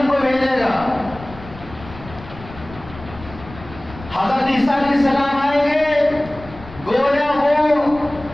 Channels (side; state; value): left; noise; rumble, 17 dB below the sound